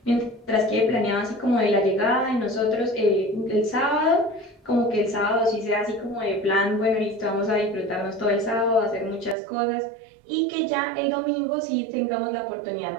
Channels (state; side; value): drops out; left; at 9.3 s